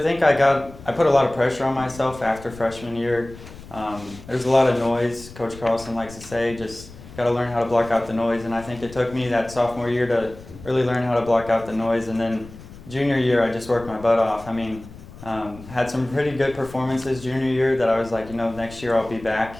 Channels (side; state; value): left; noise; rumble, 17 dB below the sound